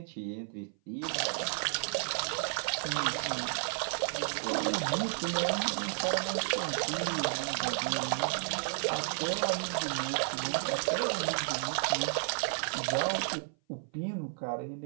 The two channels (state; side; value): silent; left; 56 dB below the other